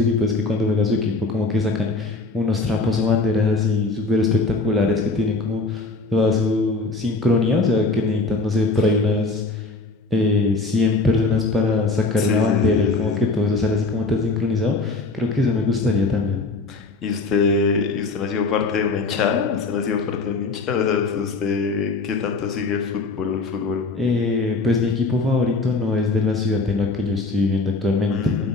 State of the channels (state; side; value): quieter; right; 3.6 dB